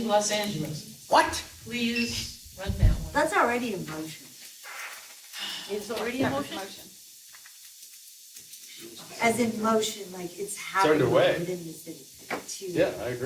Los Angeles. What? Please run that one. That's already a motion. It's already a motion. As in motion, like it's happening underway. within the city. to- Yeah, I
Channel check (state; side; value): identical; both; correlation 1.00